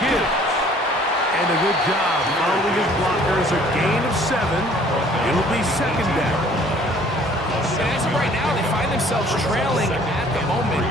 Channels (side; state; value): both; normal; correlation 0.55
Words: And a good job following his blockers, a gain of 7. It'll be second down. And as of right now, they find themselves trailing at the moment,